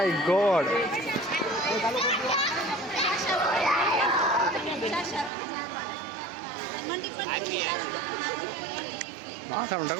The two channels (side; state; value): left; drops out; at 5.3 s